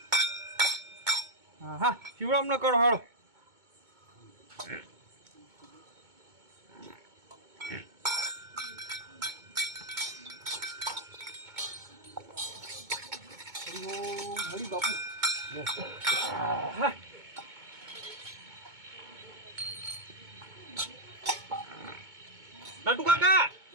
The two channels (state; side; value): late; left; 2.2 ms